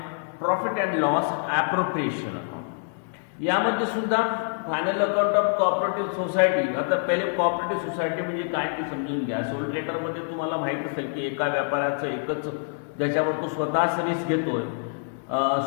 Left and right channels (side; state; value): right; silent; digital silence